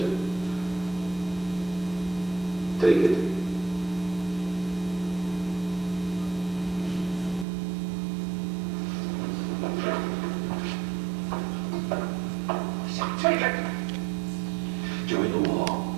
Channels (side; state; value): left; drops out; at 7.5 s